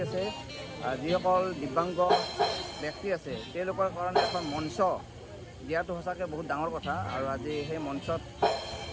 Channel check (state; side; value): identical; both; correlation 1.00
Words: আছে। যিসকল দিব্যাংগ ব্যক্তি আছে তেওঁলোকৰ কাৰণে এখন মঞ্চ দিয়াটো সঁচাকৈ বহুত ডাঙৰ কথা আৰু আজি সেই মঞ্চত